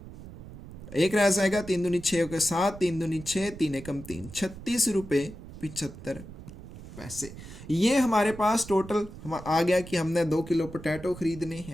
एक रह जाएगा, 3 दूनी 6 के 7, 3 दूनी 6, 3 एकम 3, ₹36.75। ये हमारे पास टोटल आ गया कि हमने 2 किलो पोटैटो खरीदने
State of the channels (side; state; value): right; noise; rumble, 14 dB below the sound